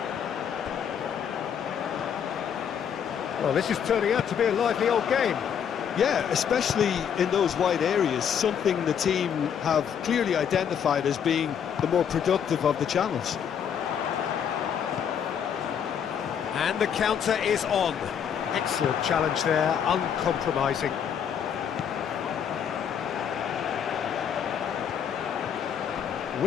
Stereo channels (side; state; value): right; quieter; 8.1 dB